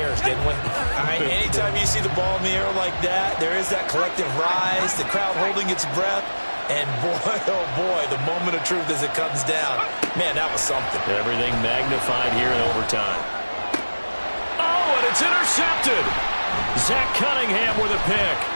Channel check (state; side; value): inverted; both; correlation -1.00